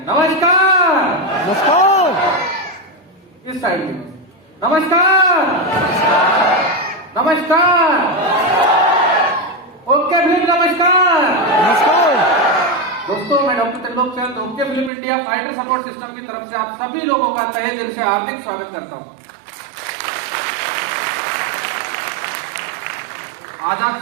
नमस्कार। नमस्कार। इस साइड में नमस्कार। नमस्कार। ओके फिल्म नमस्कार। नमस्कार। दोस्तों, मैं doctor Trilok Chand okay film India fighter support system की तरफ से आप सभी लोगों का तहे दिल से हार्दिक स्वागत करता हूं। आज आप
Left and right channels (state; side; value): drops out; left; at 14.9 s